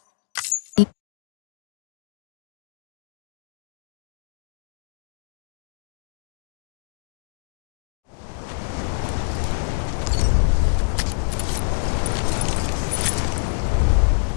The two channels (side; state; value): right; silent; digital silence